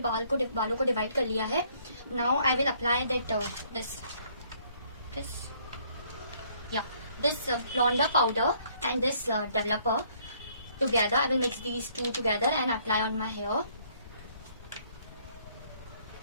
बालों को डिवाइड कर लिया है. Now I will apply that this blonder powder and this developer together. I will mix these two together and apply on my hair.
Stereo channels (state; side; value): inverted; both; correlation -0.64